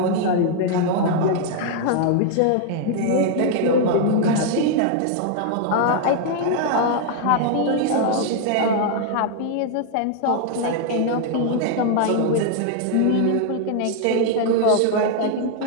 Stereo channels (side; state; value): both; different; correlation 0.00